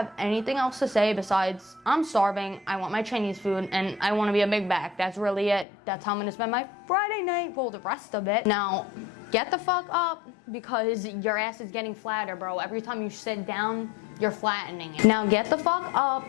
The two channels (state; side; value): drops out; right; at 5.7 s